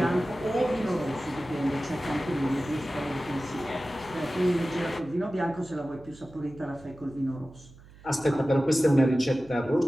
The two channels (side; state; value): right; noise; hum, 22 dB below the sound